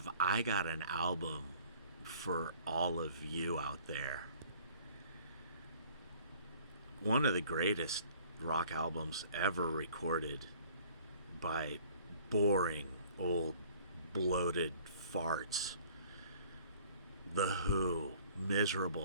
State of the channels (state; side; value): inverted; both; correlation -0.53